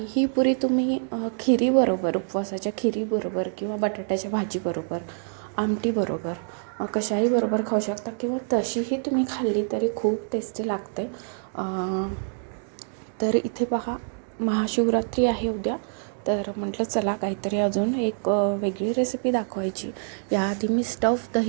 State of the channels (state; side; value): silent; left; 61 dB below the other